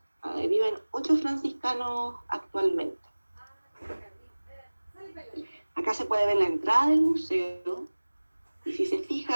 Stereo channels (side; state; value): both; inverted; correlation -1.00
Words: Viven 8 franciscanos actualmente. Acá se puede ver la entrada del museo, y si se